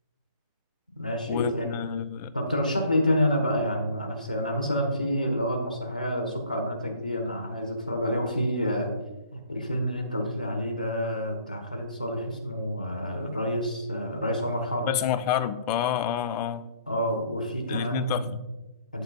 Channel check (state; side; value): inverted; both; correlation -0.57